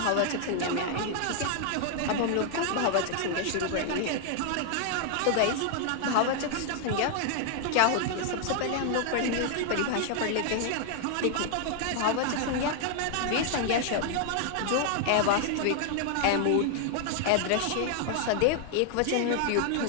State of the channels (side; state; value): both; different; correlation 0.00